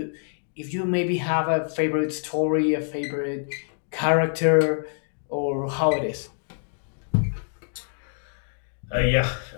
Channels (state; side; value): silent; right; digital silence